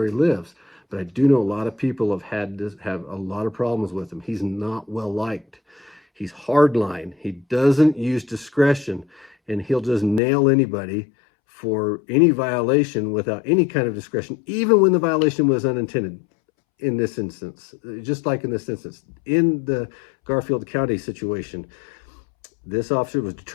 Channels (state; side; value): drops out; right; at 10.2 s